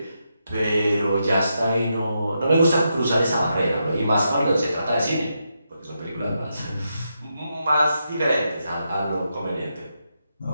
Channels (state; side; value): inverted; both; correlation -0.84